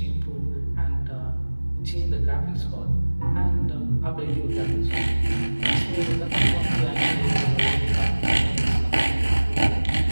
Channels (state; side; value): inverted; both; correlation -1.00